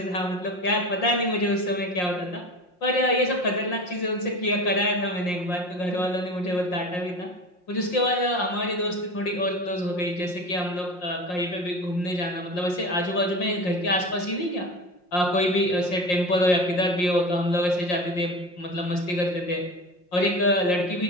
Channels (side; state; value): right; late; 5.6 ms